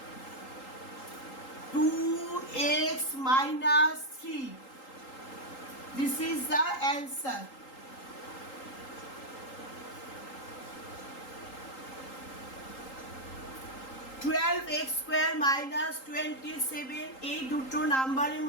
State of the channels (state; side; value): late; right; 3.8 ms